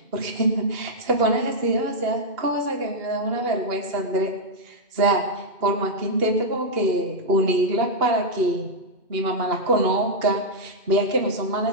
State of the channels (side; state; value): left; late; 2.8 ms